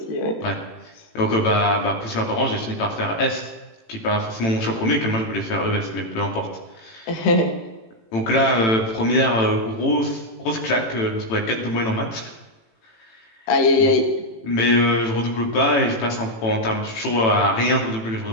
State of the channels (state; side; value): late; right; 18 ms